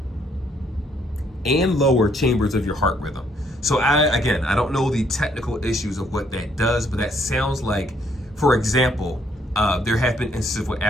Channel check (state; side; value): normal; both; correlation 0.69